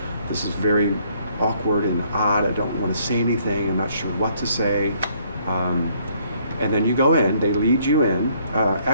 this is very awkward and odd. I don't want to say anything. I'm not sure what to say. And then you go in, they lead you in.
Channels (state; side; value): inverted; both; correlation -0.66